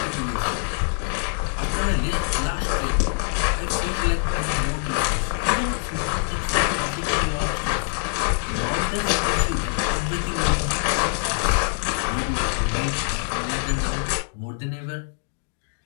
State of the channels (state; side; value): silent; right; 60 dB below the other